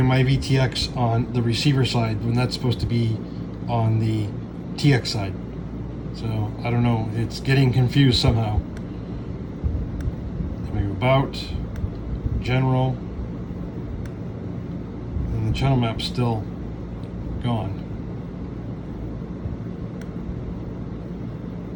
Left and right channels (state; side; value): identical; both; correlation 1.00